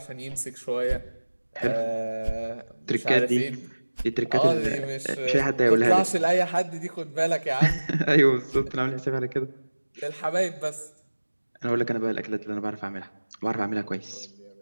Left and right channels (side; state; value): both; inverted; correlation -1.00